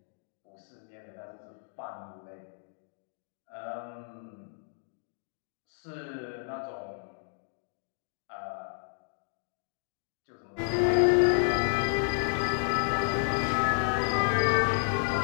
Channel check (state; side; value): silent; right; digital silence